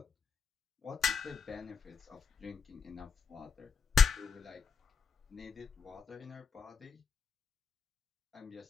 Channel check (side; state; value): right; quieter; 6.2 dB